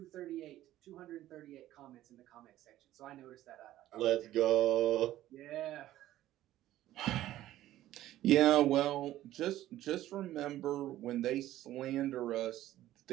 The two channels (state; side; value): quieter; left; 14.1 dB